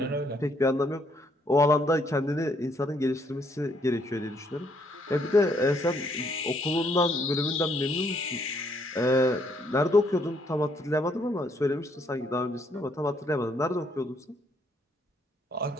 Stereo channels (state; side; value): normal; both; correlation 0.70